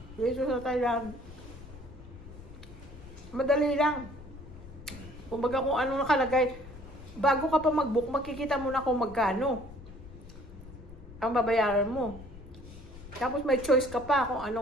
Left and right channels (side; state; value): left; noise; rumble, 16 dB below the sound